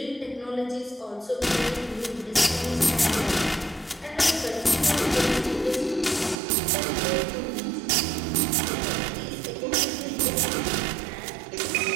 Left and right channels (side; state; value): left; drops out; at 6.4 s